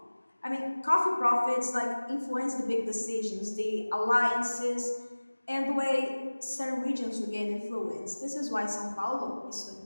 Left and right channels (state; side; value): inverted; both; correlation -1.00